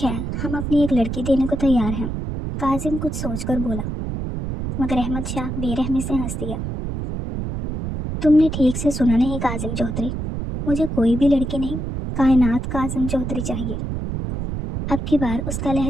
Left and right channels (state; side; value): noise; right; rumble, 4 dB below the sound